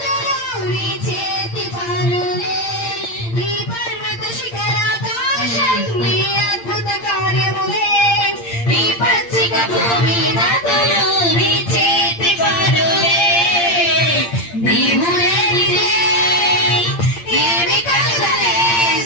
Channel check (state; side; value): late; right; 8.7 ms